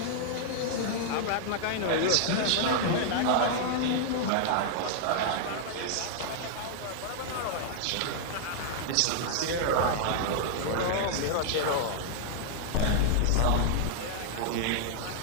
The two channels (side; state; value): both; different; correlation -0.01